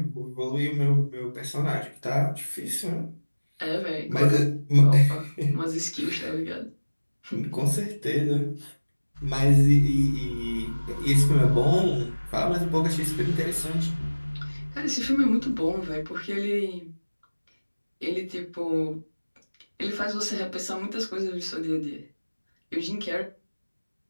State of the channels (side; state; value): both; inverted; correlation -1.00